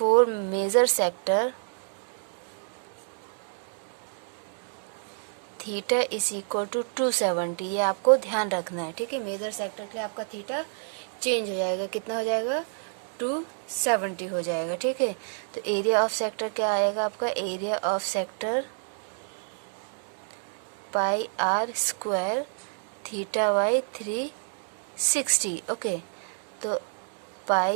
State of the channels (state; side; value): silent; left; digital silence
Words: major sector theta is equal to 270। ये आपको ध्यान रखना है, ठीक है। मेजर सेक्टर के लिए आपका थीटा चेंज हो जाएगा, कितना हो जाएगा? 270 हो जाएगा, ठीक है। तो एरिया ऑफ सेक्टर क्या आएगा आपका? Area of sector pi are square theta by 360। Okay, तो